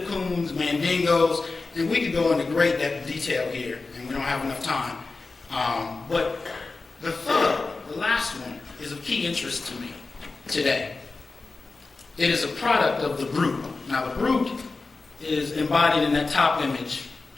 Coons, Mandingos, and we could go into great detail here, and we don't have enough time. But the third, the last one, is of key interest to me today. It is a product of the brute. Now the brute is embodied in that top image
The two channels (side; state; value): right; quieter; 3.8 dB